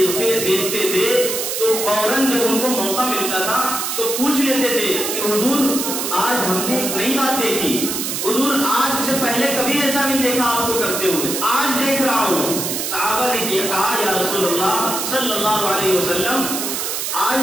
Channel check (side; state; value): right; noise; hiss, 2 dB below the sound